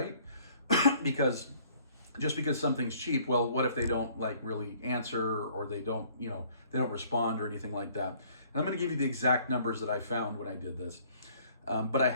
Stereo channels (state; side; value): inverted; both; correlation -0.59